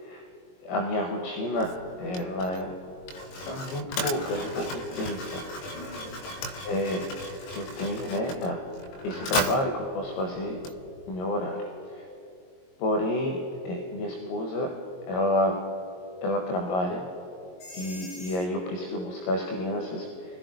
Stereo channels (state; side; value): late; right; 22 ms